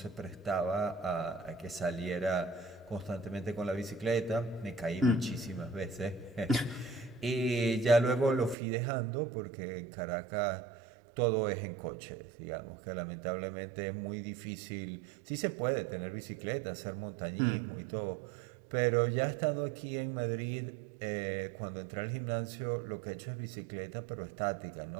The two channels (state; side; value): drops out; left; at 8.6 s